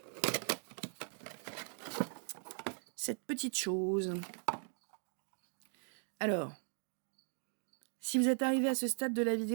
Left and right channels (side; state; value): left; silent; 52 dB below the other